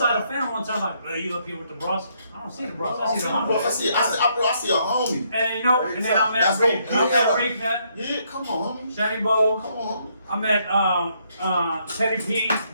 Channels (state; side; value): inverted; both; correlation -0.72